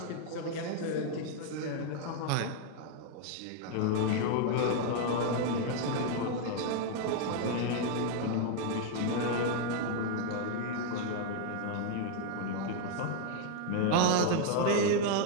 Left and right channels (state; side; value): different; both; correlation 0.00